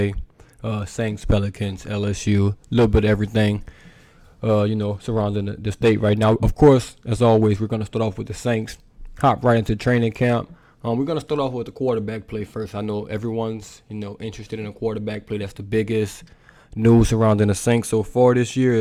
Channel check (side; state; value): both; identical; correlation 1.00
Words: Saints, Pelicans, LSU, a little bit of everything, surrounding the state right now. Of course, as always, we're going to start off with the Saints. Hop right into training camp. We're going to start off with the quarterback play first. I know everyone's, interested in the quarterback play. That's the biggest news surrounding the Saints so far this year